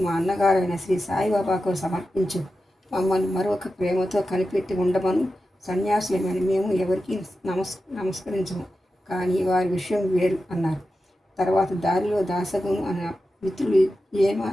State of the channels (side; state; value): both; normal; correlation 0.91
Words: మా అన్నగారైన శ్రీ సాయిబాబాకు సమర్పించు, మమ్మల్ని మరొక ప్రేమతో కనిపెట్టి ఉండమను. సన్యాసులమైన మేము ఎవరికి నమస్కరించము, కానీ వారి విషయం వేరు అన్నారు. తర్వాత దారిలో దాసగును అనే